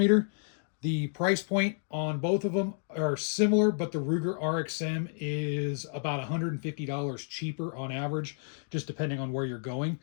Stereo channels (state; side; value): silent; right; digital silence